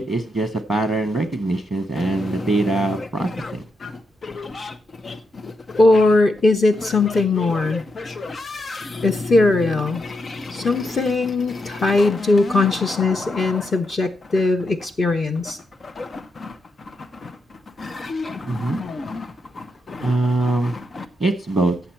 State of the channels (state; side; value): normal; both; correlation 0.83